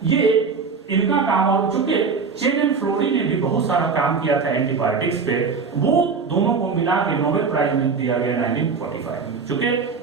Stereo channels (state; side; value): quieter; left; 5.2 dB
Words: ये इनका काम, और चूंकि चेन एंड फ्लोरी ने भी बहुत सारा काम किया था एंटीबायोटिक्स पे, वो दोनों को मिला के नोबेल प्राइज दिया गया 1945 में। चूंकि